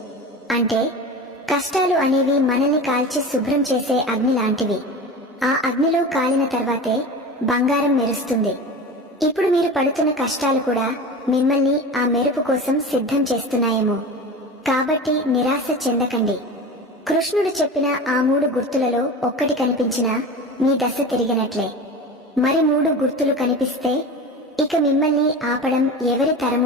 అంటే కష్టాలు అనేవి మనల్ని కాల్చి శుభ్రం చేసే అగ్ని లాంటివి. ఆ అగ్నిలో కాలిన తర్వాతే బంగారం మెరుస్తుంది. ఇప్పుడు మీరు పడుతున్న కష్టాలు కూడా మిమ్మల్ని ఆ మెరుపు కోసం సిద్ధం చేస్తున్నాయేమో. కాబట్టి నిరాశ చెందకండి. కృష్ణుడు చెప్పిన ఆ 3 గుర్తులలో ఒక్కటి కనిపించినా మీ దశ తిరిగినట్లే. మరి 3 గుర్తులు కనిపిస్తే ఇక మిమ్మల్ని ఆపడం ఎవరి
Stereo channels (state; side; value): normal; both; correlation 0.31